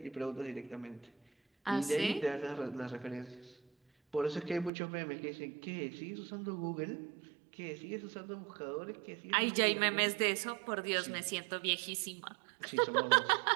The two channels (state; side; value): drops out; left; at 4.7 s